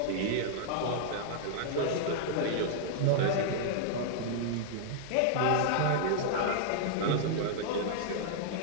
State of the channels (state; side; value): different; both; correlation -0.01